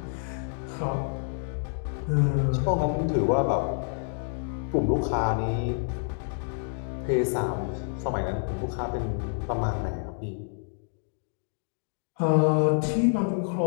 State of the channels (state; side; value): silent; right; digital silence